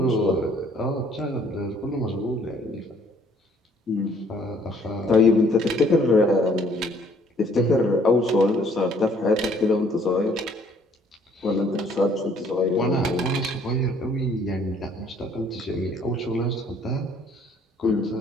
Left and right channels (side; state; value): both; normal; correlation 0.61